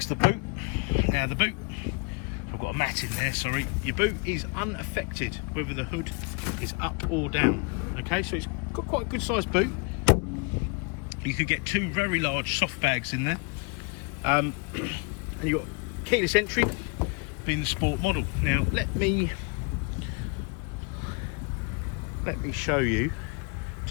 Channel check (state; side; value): quieter; right; 32.0 dB